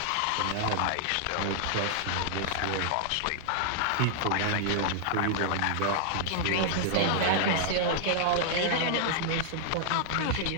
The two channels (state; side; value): different; both; correlation -0.01